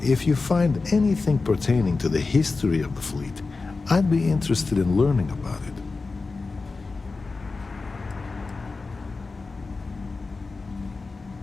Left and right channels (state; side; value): quieter; right; 4.0 dB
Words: if you find anything pertaining to the history of the fleet, I'd be interested in learning about it.